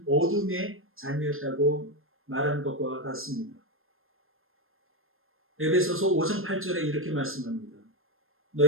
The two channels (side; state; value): left; late; 0.60 ms